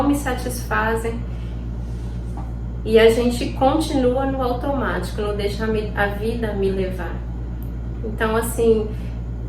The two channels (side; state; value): both; identical; correlation 1.00